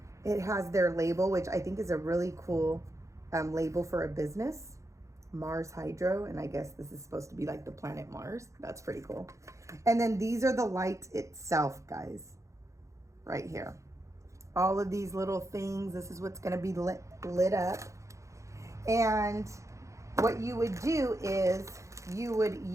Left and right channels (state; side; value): late; left; 0.15 ms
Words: It has their label, which I think is a really cool label for a business. Mars Hydro, and I guess this is supposed to be like the planet Mars. That's pretty cool. And then these are the lights itself, guys. Right here. All of these little things, this is what's going to be lit up. And what you would do is you would